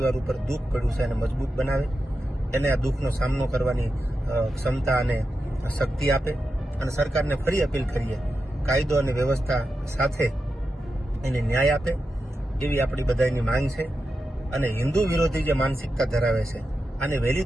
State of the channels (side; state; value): both; normal; correlation 0.89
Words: ઉપર દુઃખ પડ્યું છે એને મજબૂત બનાવે, એને આ દુઃખનો સામનો કરવાની ક્ષમતા અને શક્તિ આપે. અને સરકારને ફરી અપીલ કરીએ, કાયદો અને વ્યવસ્થા સાથે એને ન્યાય આપે એવી આપણી બધાની માંગ છે. અને હિન્દુ વિરોધી જે માનસિકતા ધરાવે છે અને વહેલી